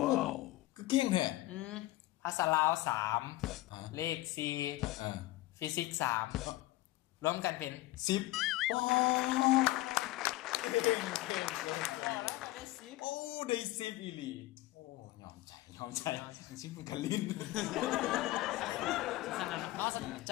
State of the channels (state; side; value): quieter; right; 17.7 dB